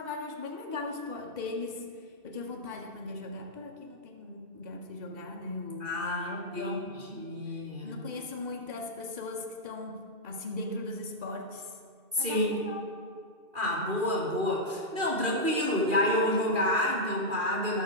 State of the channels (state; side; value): late; left; 2.7 ms